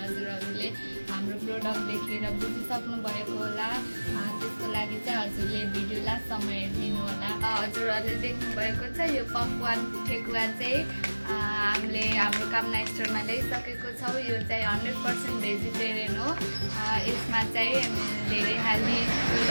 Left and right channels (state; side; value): inverted; both; correlation -1.00